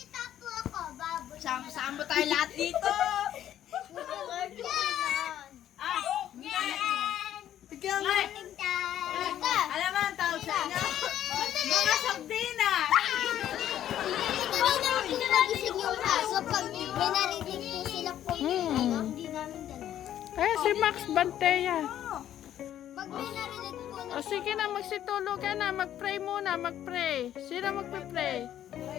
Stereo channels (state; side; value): quieter; right; 11.3 dB